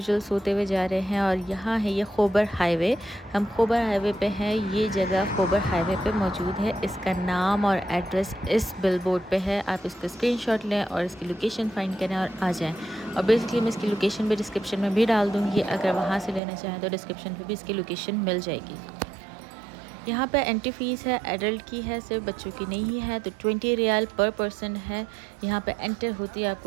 सोते हुए जा रहे हैं और यहाँ है ये खोबर हाईवे। हम खोबर हाईवे पे हैं। ये जगह खोबर हाईवे पे मौजूद है। इसका नाम और एड्रेस इस बिलबोर्ड पे है। आप इसका स्क्रीनशॉट लें और इसकी लोकेशन फाइंड करें और आ जाएँ। और बेसिकली मैं इसकी लोकेशन भी डिस्क्रिप्शन में भी डाल दूँगी। अगर वहाँ से लेना चाहें तो डिस्क्रिप्शन पे भी इसकी लोकेशन मिल जाएगी। यहाँ पे एंट्री फ़ीस है, एडल्ट की है, सिर्फ बच्चों की नहीं है। तो 20 रियाल पर पर्सन है। यहाँ पे एंटर होती है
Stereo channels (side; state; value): left; drops out; at 16.4 s